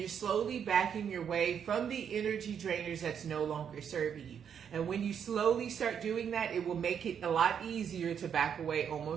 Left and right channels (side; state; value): left; quieter; 7.9 dB